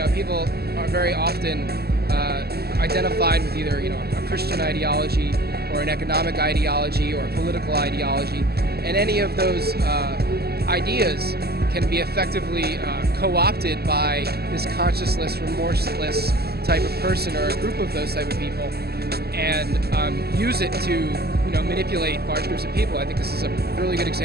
people are very often identified with either a Christian ideology or an economic ideology or a political ideology, and any of those ideas can be effectively co-opted by this conscienceless, remorseless type of person or a group of those type of people, and use it to manipulate large groups of people. I think this is a really good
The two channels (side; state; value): left; late; 0.46 ms